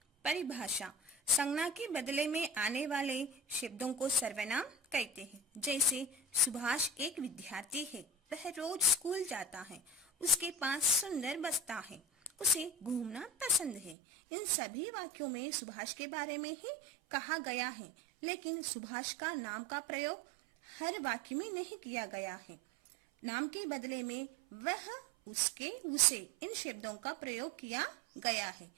परिभाषा: संज्ञा के बदले में आने वाले शब्दों को सर्वनाम कहते हैं। जैसे सुभाष एक विद्यार्थी है, वह रोज स्कूल जाता है, उसके पास सुंदर बस्ता है, उसे घूमना पसंद है। इन सभी वाक्यों में सुभाष के बारे में ही कहा गया है, लेकिन सुभाष का नाम का प्रयोग हर वाक्य में नहीं किया गया है। नाम के बदले में वह, उसके, उसे इन शब्दों का प्रयोग किया गया है।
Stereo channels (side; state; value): left; drops out; at 14.0 s